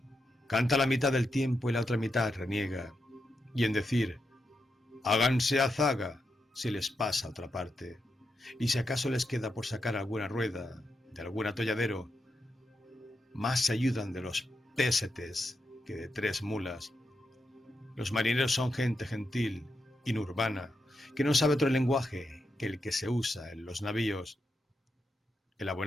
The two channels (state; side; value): normal; both; correlation 0.85